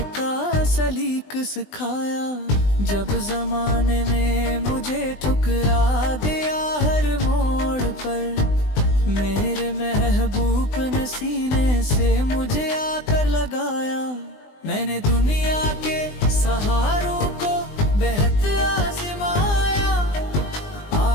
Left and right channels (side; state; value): right; late; 20 ms